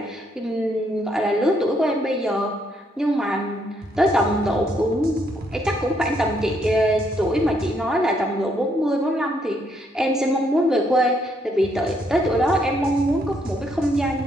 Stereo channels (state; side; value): normal; both; correlation 0.73